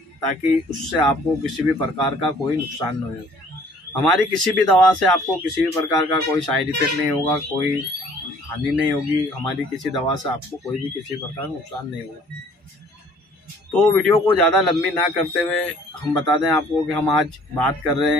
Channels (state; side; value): normal; both; correlation 0.56